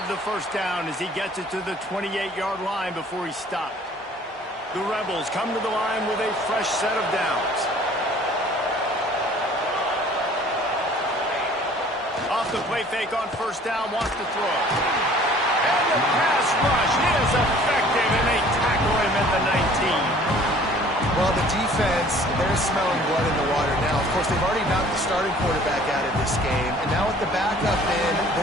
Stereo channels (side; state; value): both; normal; correlation 0.52